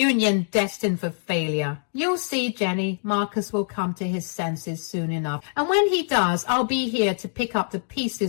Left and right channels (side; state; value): right; silent; digital silence